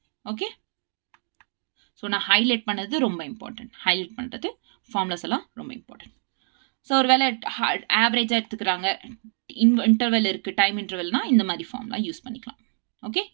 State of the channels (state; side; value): silent; left; 58 dB below the other